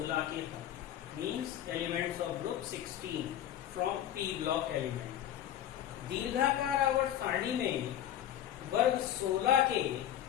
के तत्व means elements of group 16 from P block element. दीर्घाकार आवर्त सारणी में वर्ग 16 के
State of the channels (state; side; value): quieter; right; 11.1 dB